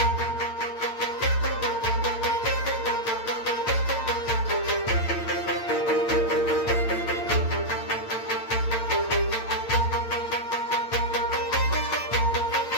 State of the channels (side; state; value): right; late; 8.8 ms